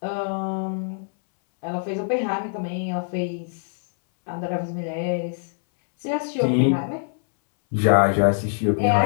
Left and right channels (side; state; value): right; silent; 63 dB below the other